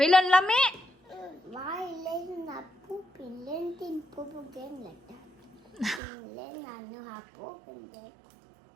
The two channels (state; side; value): drops out; left; at 6.0 s